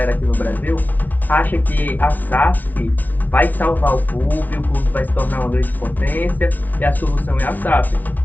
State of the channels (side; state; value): right; late; 0.079 ms